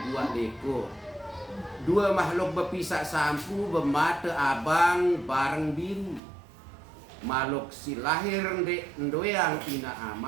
buat leko. Dua makhluk berpisah sampu bermata abang bareng biru. Makhluk si lahir ndoyang ina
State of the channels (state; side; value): drops out; left; at 6.2 s